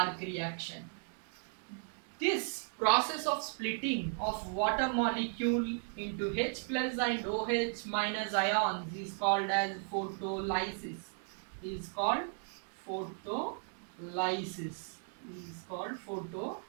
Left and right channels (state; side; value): silent; left; 54 dB below the other